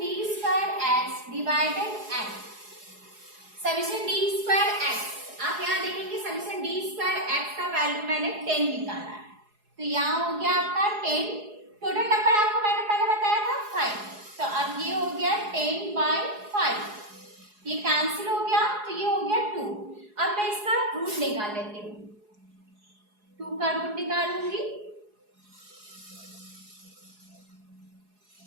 d square x divided n। Summation d square x, आप यहाँ देखेंगे समीशन d स्क्वायर x का वैल्यू मैंने 10 निकाला है, तो यहाँ हो गया आपका 10। टोटल नंबर आपको मैंने पहले बताया था 5, तो अब ये हो गया 10/5, ये कैंसिल हो गया तो ये हो गया 2। अब मैं इसका रूट निकाल लेती हूँ, 2 का रूट निकालूंगी।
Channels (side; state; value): left; late; 4.8 ms